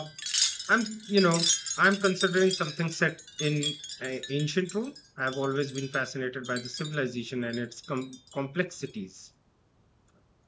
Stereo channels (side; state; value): both; identical; correlation 1.00